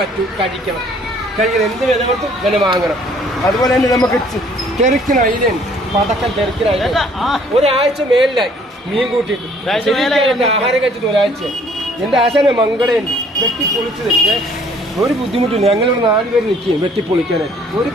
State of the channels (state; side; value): normal; both; correlation 0.59